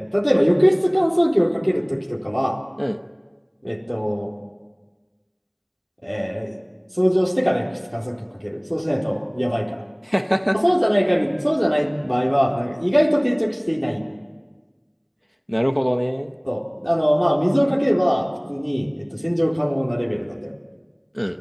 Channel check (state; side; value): identical; both; correlation 1.00